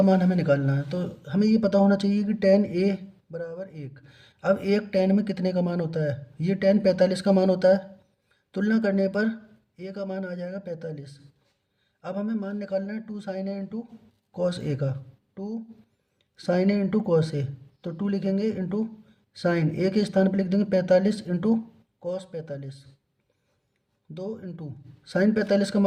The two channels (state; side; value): identical; both; correlation 1.00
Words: मान हमें निकालना है। तो हमें ये पता होना चाहिए कि tan a बराबर 1। अब एक tan में कितने का मान होता है, ये tan 45 का मान होता है। तुलना करने पर a का मान आ जाएगा 45। अब हमें मान निकालना है 2 sin a into cos A का। 2 sin a into cos A, तो 2 लिखेंगे इंटू साइन ए के स्थान पर लिख देंगे 45 इंटू कॉस 45, 2 इंटू साइन 45 का